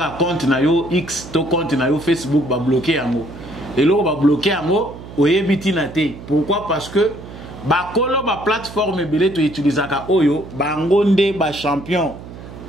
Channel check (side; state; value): right; noise; hum, 15 dB below the sound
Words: un compte na yo X, ton compte na yo Facebook va bloquer en haut. Et là, on va bloquer en haut, on est bitinate. Pourquoi? Parce que ba plateforme belé to utiliser ka oyo ba ngonde ba champion